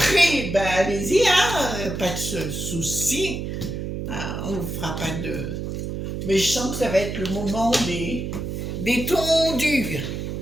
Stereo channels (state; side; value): noise; right; hum, 5 dB below the sound